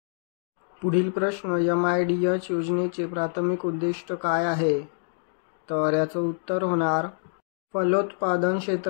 पुढील प्रश्न, MIDH योजनेचे प्राथमिक उद्दिष्ट काय आहे? तर याचं उत्तर होणार फलोत्पादन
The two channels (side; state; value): right; silent; digital silence